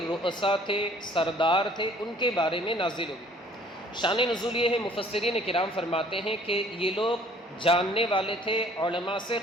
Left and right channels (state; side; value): normal; both; correlation 0.56